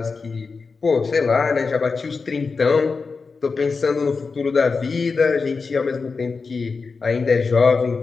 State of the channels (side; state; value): right; quieter; 4.6 dB